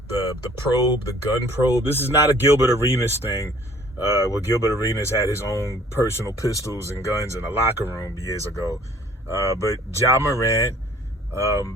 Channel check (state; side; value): normal; both; correlation 0.55